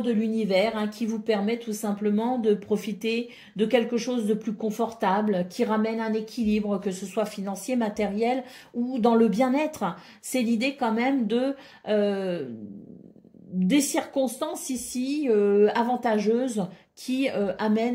l'univers, hein, qui vous permet tout simplement de profiter de quelque chose de plus confortable, qui ramène un équilibre, que ce soit financier, matériel ou dans le bien-être. C'est l'idée quand même de des circonstances ici avantageuses qui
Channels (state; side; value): identical; both; correlation 1.00